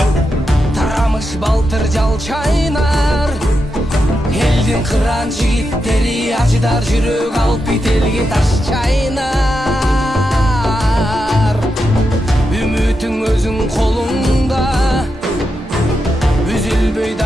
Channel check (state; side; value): normal; both; correlation 0.86